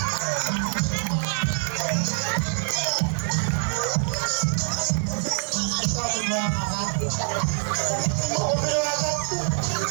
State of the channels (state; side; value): silent; left; 62 dB below the other